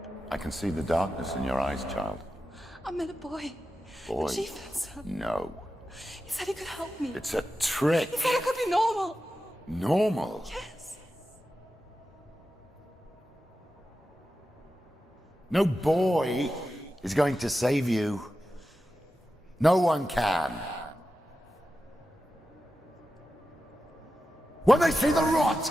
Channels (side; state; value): both; normal; correlation 0.92